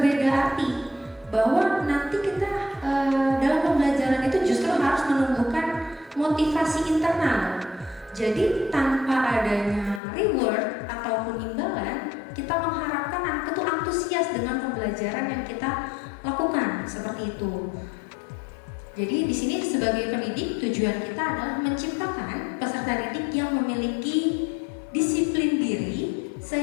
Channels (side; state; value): right; drops out; at 10.0 s